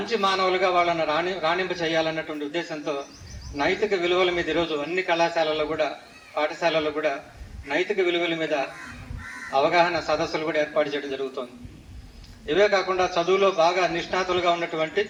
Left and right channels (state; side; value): identical; both; correlation 1.00